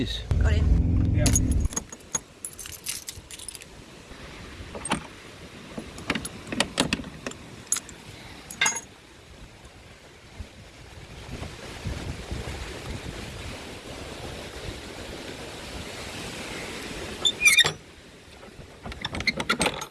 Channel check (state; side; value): identical; both; correlation 1.00